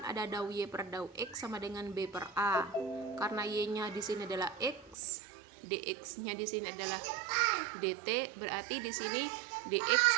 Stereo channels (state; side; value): drops out; left; at 5.0 s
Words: ada dau Y per dau X sama dengan B per A. Karena Y-nya di sini adalah X, dx-nya di sini adalah dt, berarti di sini dx